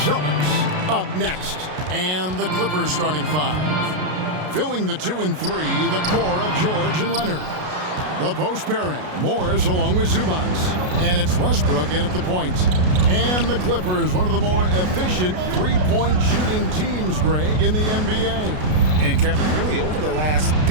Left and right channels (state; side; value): late; left; 33 ms